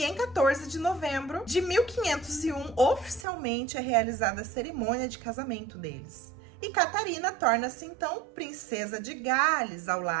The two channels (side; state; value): left; drops out; at 3.2 s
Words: em 14 de novembro de 1501, oficialmente é realizada a cerimônia de casamento deles. E Catarina torna-se, então, princesa de Gales, ao